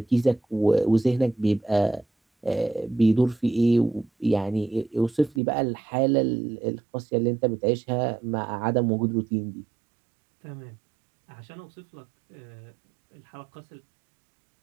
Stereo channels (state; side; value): drops out; left; at 5.4 s